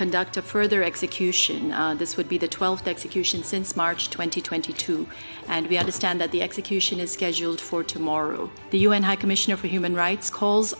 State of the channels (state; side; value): inverted; both; correlation -1.00